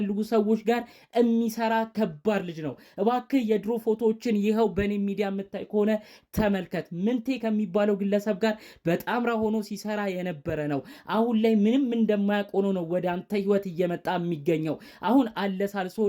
ሰዎች ጋር የሚሰራ ከባድ ልጅ ነው። እባክህ የድሮ ፎቶዎችን ይኸው በኔ ሚዲያ የምታይ ከሆነ ተመልከት። ምንቴ ከሚባለው ግለሰብ ጋር በጣምራ ሆኖ ሲሰራ የነበረ ነው። አሁን ላይ ምንም እንደማያውቅ ሆኖ ነው ወደ አንተ ህይወት እየመጣ የሚገኘው። አሁን አለሳልሶ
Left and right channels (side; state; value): both; identical; correlation 1.00